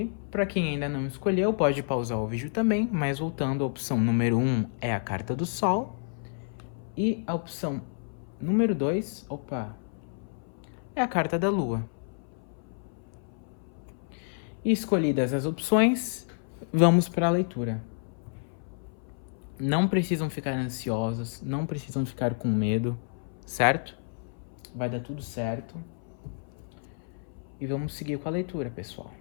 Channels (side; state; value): right; silent; 58 dB below the other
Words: Para quem ainda não escolheu, pode pausar o vídeo também. Mas voltando, a opção número 1 é a carta do Sol. E a opção número 2, é a carta da Lua. E escolhidas as opções, vamos para a leitura. Não precisam ficar ansiosos, não precisam ficar com medo, certo? Vai dar tudo certo. E vamos seguir com a leitura, pessoal.